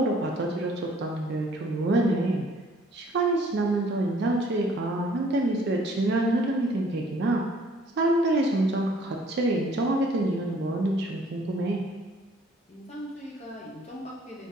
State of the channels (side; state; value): both; normal; correlation 0.59